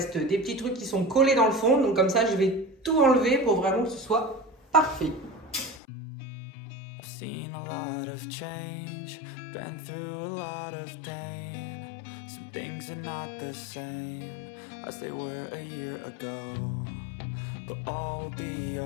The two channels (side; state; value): right; drops out; at 5.8 s